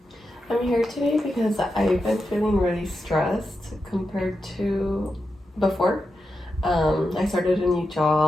I'm here today because I've been feeling really stressed compared to before. I started a new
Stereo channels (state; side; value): normal; both; correlation 0.88